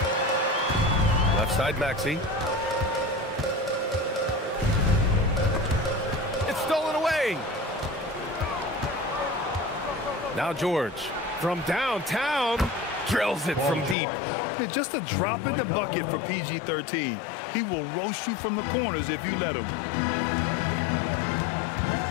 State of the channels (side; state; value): right; drops out; at 14.0 s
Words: Left side, Maxey. Stolen away. Now George from downtown drills it from deep. Just a drop in the bucket for PG-13. He will roast you from the corners if you let him.